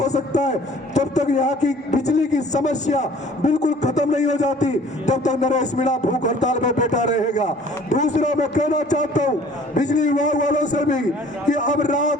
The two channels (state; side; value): normal; both; correlation 0.52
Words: सकता है, जब तक यहाँ की बिजली की समस्या बिल्कुल खत्म नहीं हो जाती, तब तक नरेश मीणा भूख हड़ताल में बैठा रहेगा। दूसरा मैं कहना चाहता हूँ बिजली विभाग वालों से भी कि अब